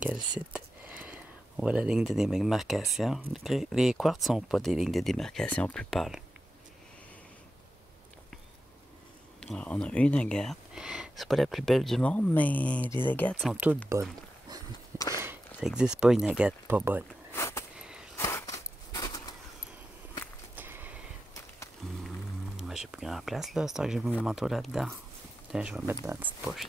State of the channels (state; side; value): normal; both; correlation 0.90